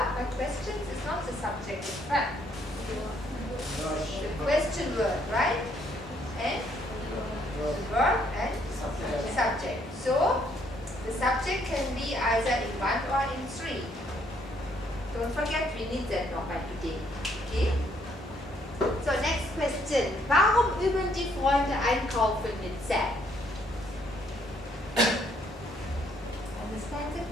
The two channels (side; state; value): both; normal; correlation 0.68